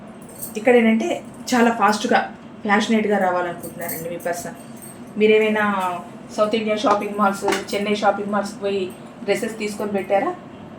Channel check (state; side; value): identical; both; correlation 1.00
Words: ఇక్కడ ఏంటంటే చాలా ఫాస్ట్గా ప్యాషనేట్గా రావాలనుకుంటున్నారండి మీ పర్సన్. మీరేమైనా south India shopping malls, Chennai shopping మాల్స్కి పోయి డ్రెస్సెస్ తీసుకొని పెట్టారా?